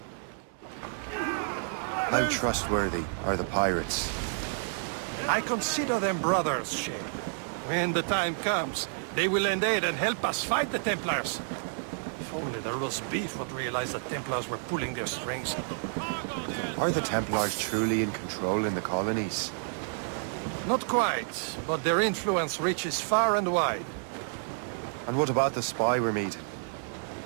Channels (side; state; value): left; silent; digital silence